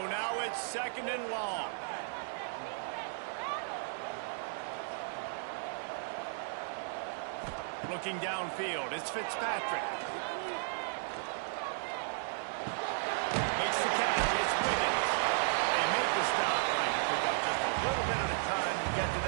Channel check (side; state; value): left; silent; digital silence